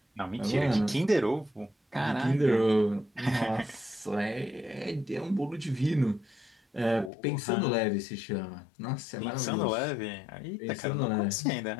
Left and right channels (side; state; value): right; drops out; at 7.1 s